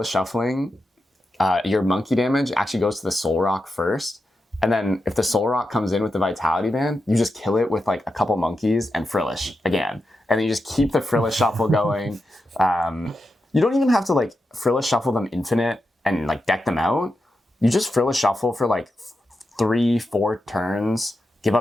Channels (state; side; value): normal; both; correlation 0.88